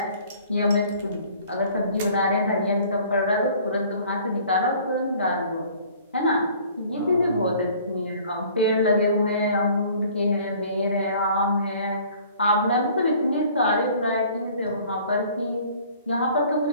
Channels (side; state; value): both; inverted; correlation -0.53